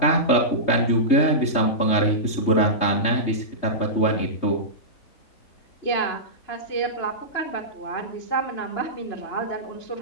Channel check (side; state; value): right; late; 3.3 ms